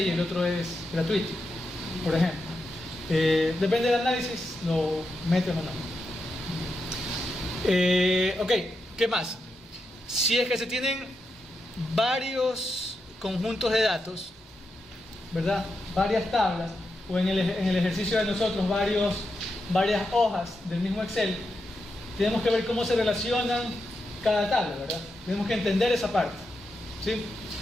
y el otro es gratuito, por ejemplo. Depende del análisis, lo meten o no. Ok, ¿qué más? Si es que se tienen varios conjuntos de datos, ¿verdad? Varias tablas, o en el ejercicio de nosotros varias hojas del mismo Excel, tenemos que ver cómo se relacionan cada tabla, ¿verdad? Tenemos que entender esa parte, ¿sí?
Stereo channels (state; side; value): normal; both; correlation 0.86